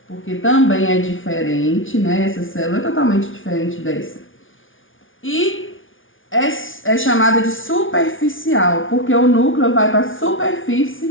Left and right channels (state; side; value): late; right; 0.57 ms